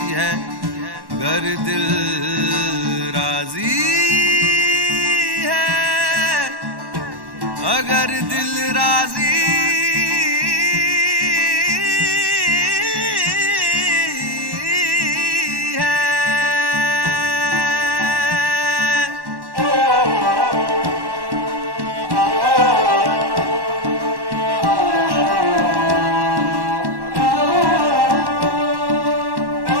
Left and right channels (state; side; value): late; left; 1.1 ms